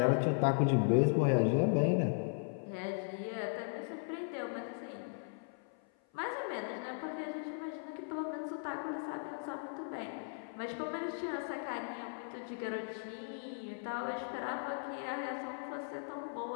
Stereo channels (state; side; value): silent; right; 53 dB below the other